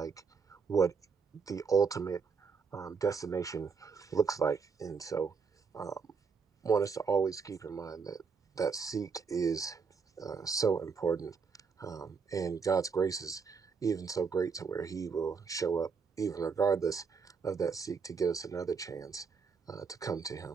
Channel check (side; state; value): left; quieter; 5.4 dB